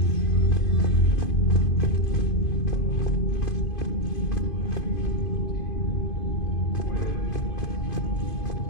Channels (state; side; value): late; right; 2.5 ms